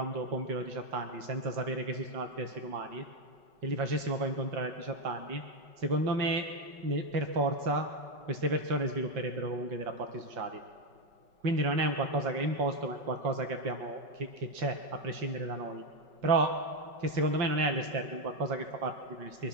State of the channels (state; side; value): late; left; 5.3 ms